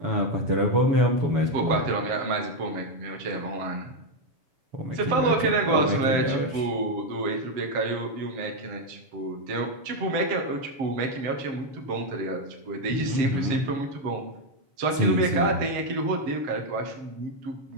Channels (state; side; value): late; left; 7.0 ms